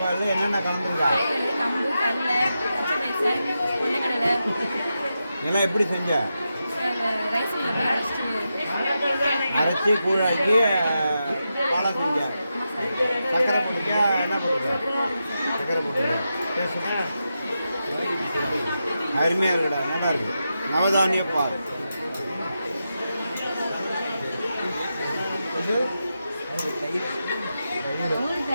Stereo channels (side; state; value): both; inverted; correlation -0.88